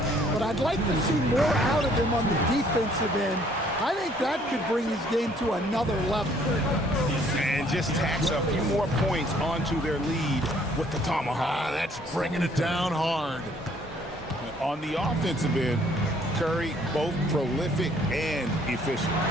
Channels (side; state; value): both; normal; correlation 0.61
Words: but I'd like to see more out of him on the defensive end. I think that could bring his game to another level. And just tacks a few more points onto their lead with the tomahawk. That's bringing it down hard. On the offensive end, Curry both prolific and efficient.